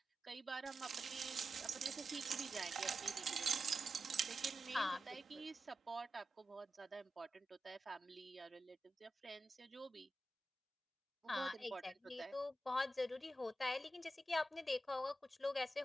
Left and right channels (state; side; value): normal; both; correlation 0.90